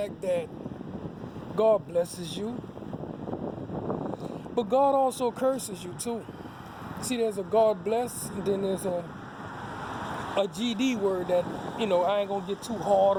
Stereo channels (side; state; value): both; identical; correlation 1.00